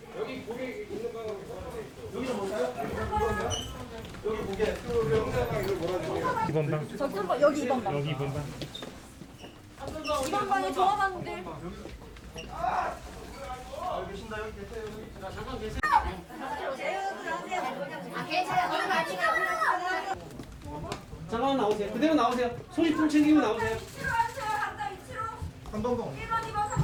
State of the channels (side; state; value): both; identical; correlation 1.00